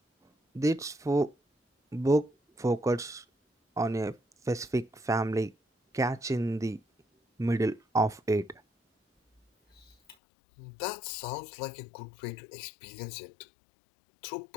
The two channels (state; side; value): drops out; right; at 10.2 s